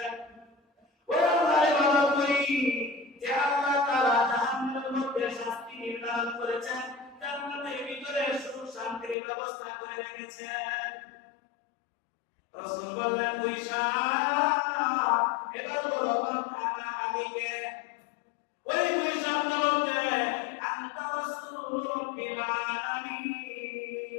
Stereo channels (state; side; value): drops out; right; at 9.2 s